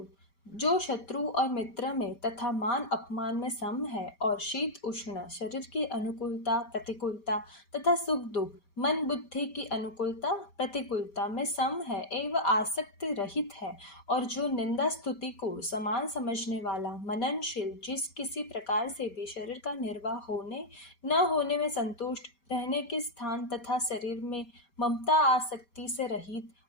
जो शत्रु और मित्र में तथा मान अपमान में सम है और शीत उष्ण, शरीर की अनुकूलता प्रतिकूलता तथा सुख दुख, मन बुद्धि की अनुकूलता प्रतिकूलता में सम है एवं आसक्ति रहित है और जो निंदा स्तुति को समान समझने वाला, मननशील, जिस किसी प्रकार से भी शरीर का निर्वाह होने न होने में संतुष्ट, रहने के स्थान तथा शरीर में ममता आसक्ति से रहित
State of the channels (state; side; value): late; right; 5.1 ms